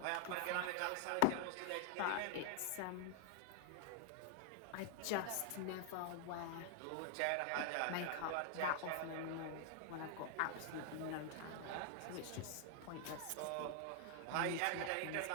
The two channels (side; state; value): both; different; correlation 0.00